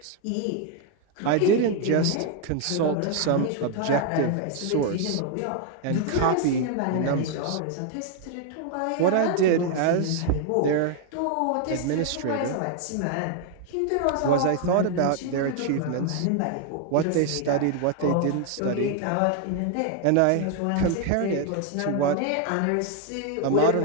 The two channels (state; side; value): different; both; correlation 0.00